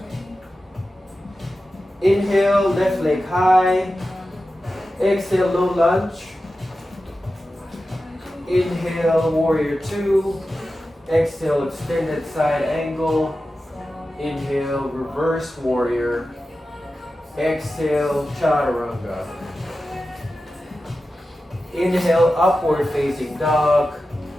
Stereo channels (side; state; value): both; normal; correlation 0.93